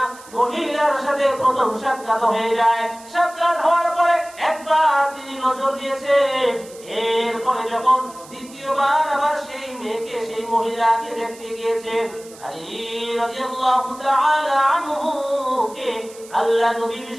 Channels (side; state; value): right; noise; hiss, 20 dB below the sound